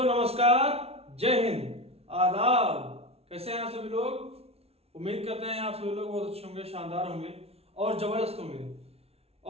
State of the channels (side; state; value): left; late; 0.30 ms